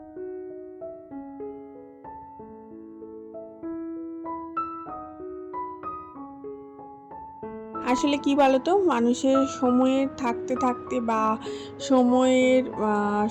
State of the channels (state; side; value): identical; both; correlation 1.00